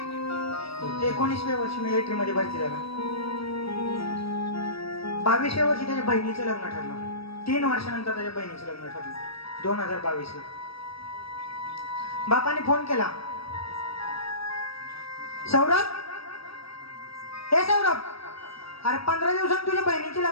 19व्या वर्षी मिलिटरी मध्ये भरती झाला. 22व्या वर्षी त्याच्या बहिणीचं लग्न ठरलं. 3 वर्षानंतर त्याच्या बहिणीचं लग्न ठरलं 2022 ला. बापाने फोन केला, सौरभ, हे सौरभ, अरे 15 दिवसांनी तुझ्या बहिणीची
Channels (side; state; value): right; late; 0.76 ms